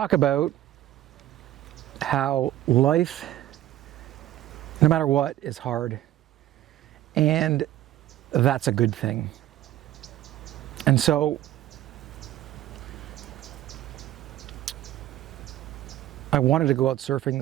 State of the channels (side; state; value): left; quieter; 13.7 dB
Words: about how life, no matter what, is hard. And that's a good thing. And so I wanted to go out surfing